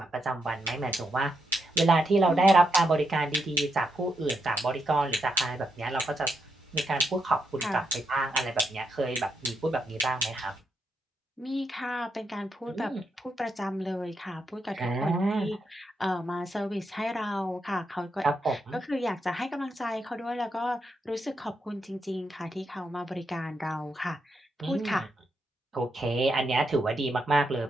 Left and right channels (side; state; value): both; normal; correlation 0.82